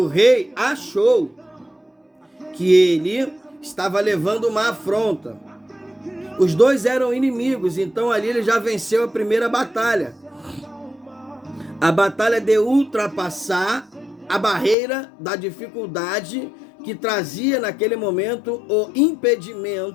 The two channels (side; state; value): right; drops out; at 14.8 s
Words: rei achou que ele estava levando uma afronta. Os dois eram inimigos, então ali ele já venceu a primeira batalha. A batalha de ultrapassar a barreira da dificuldade que trazia naquele momento o